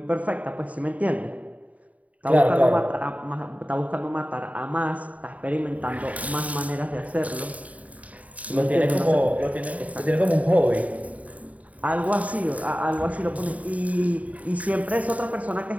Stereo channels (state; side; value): late; left; 0.069 ms